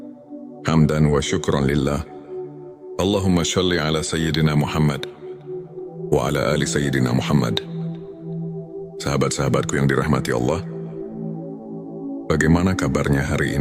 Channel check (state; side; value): identical; both; correlation 1.00